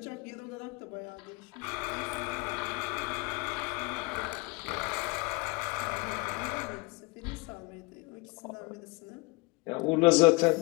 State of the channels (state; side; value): quieter; right; 26.0 dB